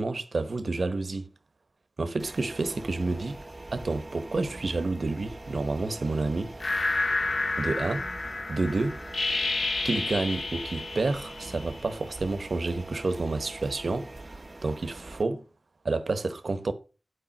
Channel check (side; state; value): both; normal; correlation 0.95